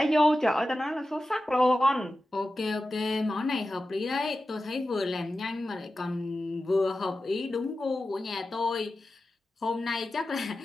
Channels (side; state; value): both; normal; correlation 0.93